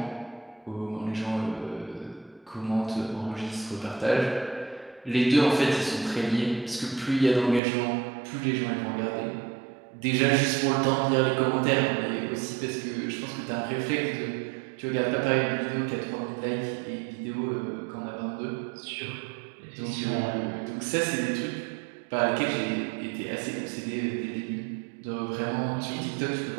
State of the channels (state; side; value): drops out; left; at 7.6 s